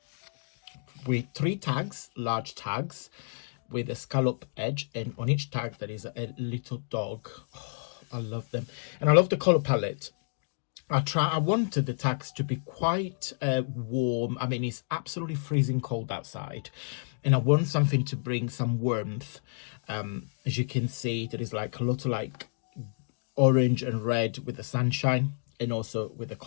with 3 tags, large tags with a scallop edge, and on each tag there is a little dog. Oh, I love them, and I love the color palette. I wanted the tags to be quite warm. I mean, it's absolutely freezing cold outside, and I want something to bring some warmth. As you can see, there is like a lot of like orange and red with the sunshine, and also with the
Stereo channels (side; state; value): right; silent; digital silence